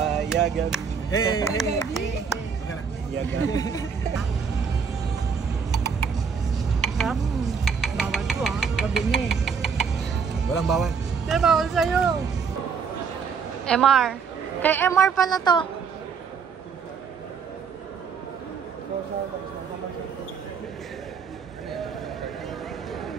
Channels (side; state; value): left; quieter; 6.1 dB